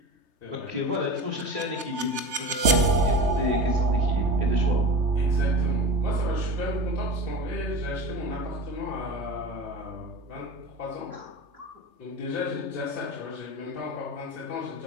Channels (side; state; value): left; late; 3.3 ms